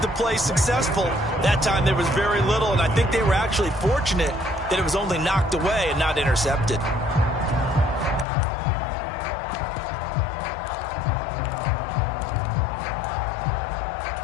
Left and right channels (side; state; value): right; drops out; at 8.2 s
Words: the play successful. That time there was very little, and I think they were actually fortunate that it was only knocked away and not intercepted.